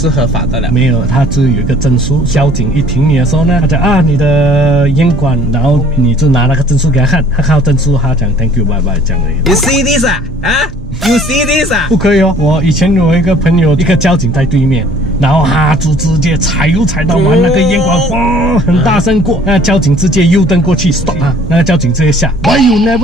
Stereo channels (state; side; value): normal; both; correlation 0.54